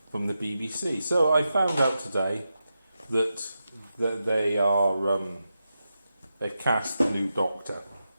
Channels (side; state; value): both; inverted; correlation -0.89